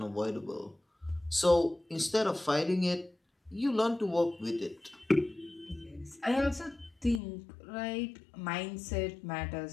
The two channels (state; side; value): drops out; right; at 7.2 s